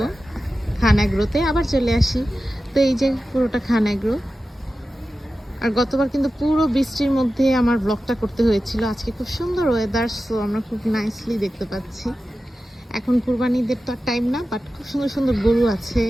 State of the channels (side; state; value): both; normal; correlation 0.94